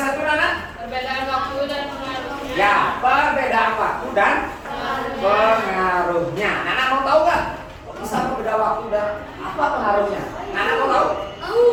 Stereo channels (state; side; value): identical; both; correlation 1.00